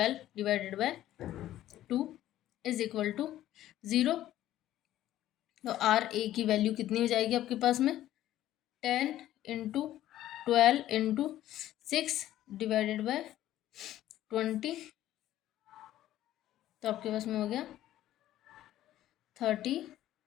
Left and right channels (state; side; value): quieter; right; 13.4 dB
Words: divided by 2 is equal to 0। तो आर ए की वैल्यू कितनी हो जाएगी आपके पास में 10 इंटू 12 इंटू 6 डिवाइडेड बाय 20। तो आपके पास में हो गया